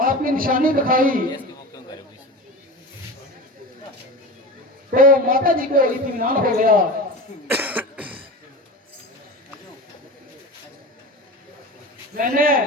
आपकी निशानी दिखाई तो माता जी को इत्मीनान हो गया। मैंने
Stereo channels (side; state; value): both; normal; correlation 0.29